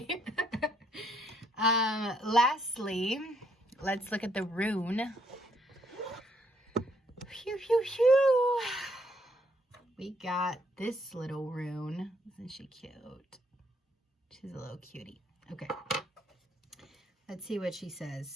Lastly, let's look at the rune. Phew. We got this little rune. Isn't she cute? She's a little cutie. Okay. Let's see what she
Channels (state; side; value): normal; both; correlation 0.70